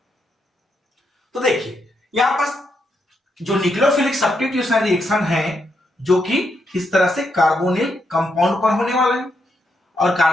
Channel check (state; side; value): normal; both; correlation 0.80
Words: तो देखिए यहां पर जो न्यूक्लियोफिलिक सब्स्टिट्यूशन रिएक्शन है जो कि इस तरह से कार्बोनिल कंपाउंड पर होने वाला है, और